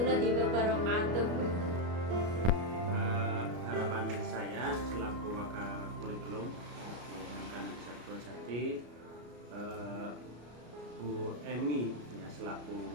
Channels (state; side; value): late; left; 33 ms